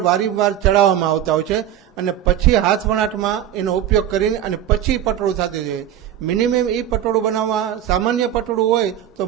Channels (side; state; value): left; quieter; 10.8 dB